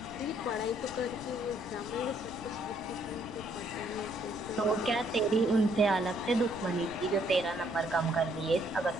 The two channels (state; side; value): noise; left; rumble, 17 dB below the sound